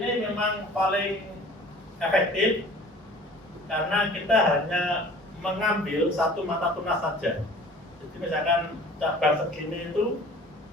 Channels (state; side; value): normal; both; correlation 0.47